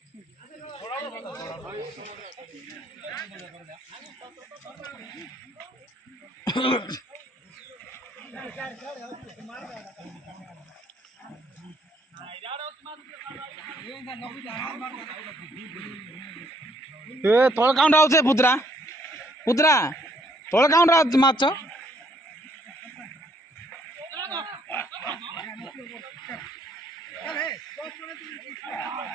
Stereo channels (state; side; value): normal; both; correlation 0.67